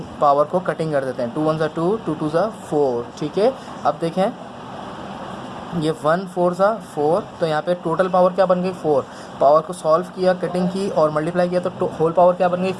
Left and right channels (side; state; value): both; identical; correlation 1.00